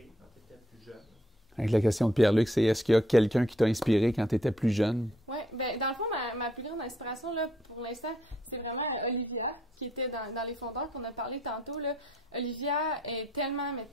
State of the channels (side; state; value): both; normal; correlation 0.68